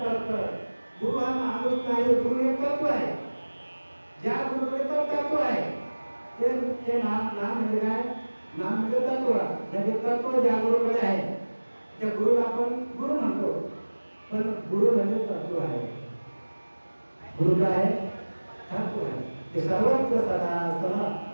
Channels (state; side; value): inverted; both; correlation -1.00